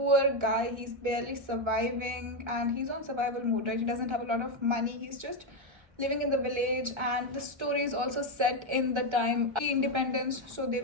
guy. He's barely surviving and he's on survival mode, right? He doesn't have a lot of money. He's just living in the village, and the story is also set in the time independence, so they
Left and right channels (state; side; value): late; left; 1.3 ms